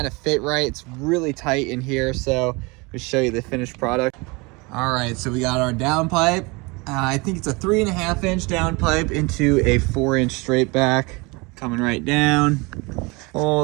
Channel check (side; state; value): left; quieter; 26.5 dB